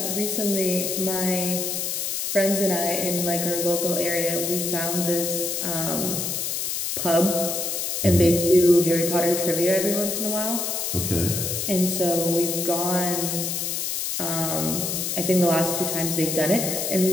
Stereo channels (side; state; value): left; noise; hiss, 2 dB below the sound